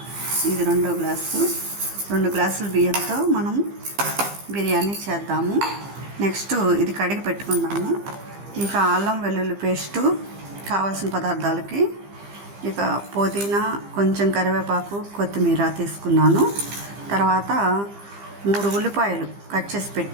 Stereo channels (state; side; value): late; left; 15 ms